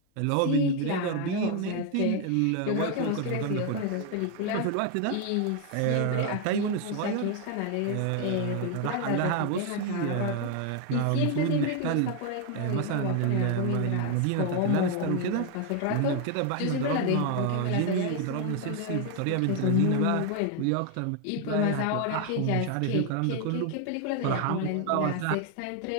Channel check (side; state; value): both; different; correlation 0.01